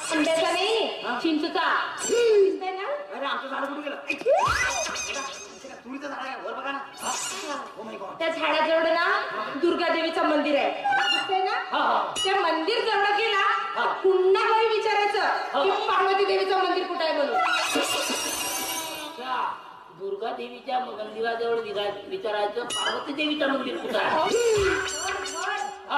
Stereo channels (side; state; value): both; identical; correlation 1.00